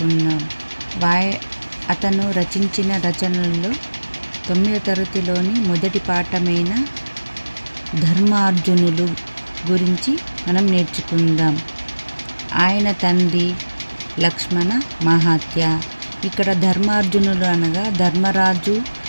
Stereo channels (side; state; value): both; inverted; correlation -1.00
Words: అతను రచించిన రచనల్లో 9వ తరగతిలోని మొదటి పాఠమైన ధర్మార్జునులు గురించి మనం నేర్చుకుందాం. ఆయన తండ్రి లక్ష్మణ మహాత్య. ఇక్కడ ధర్మార్జునులు అనగా ధర్మరాజు